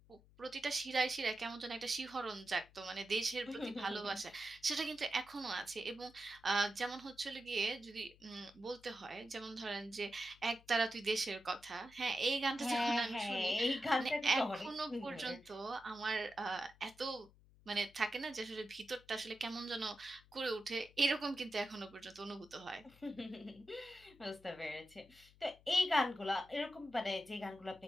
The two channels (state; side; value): noise; left; hum, 26 dB below the sound